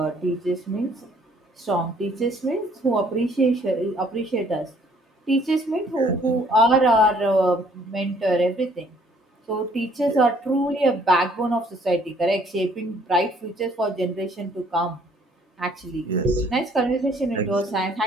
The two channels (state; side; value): normal; both; correlation 0.61